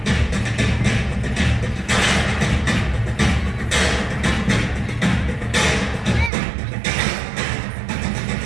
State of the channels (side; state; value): left; drops out; at 6.3 s